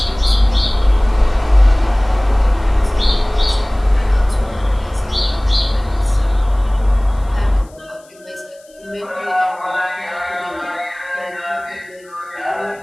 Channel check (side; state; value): left; noise; hiss, 29 dB below the sound